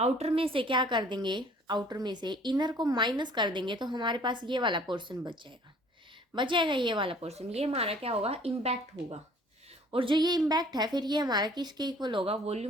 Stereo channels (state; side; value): normal; both; correlation 0.54